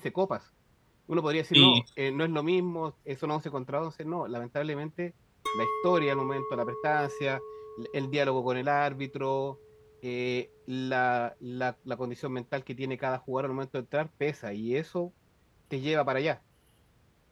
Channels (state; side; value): identical; both; correlation 1.00